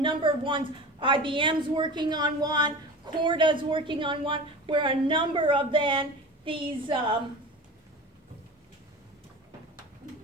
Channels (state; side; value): normal; both; correlation 0.33